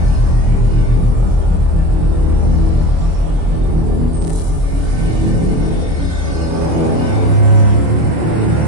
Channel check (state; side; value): late; left; 25 ms